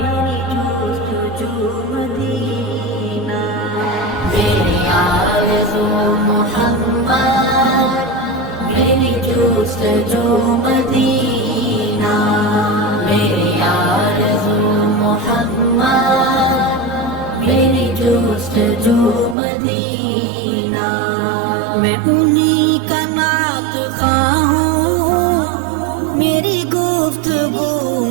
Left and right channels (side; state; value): left; drops out; at 19.4 s